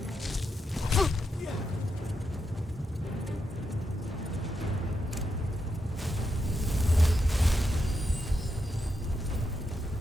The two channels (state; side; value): normal; both; correlation 0.84